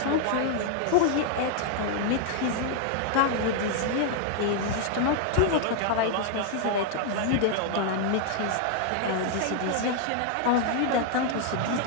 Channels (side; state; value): both; different; correlation 0.00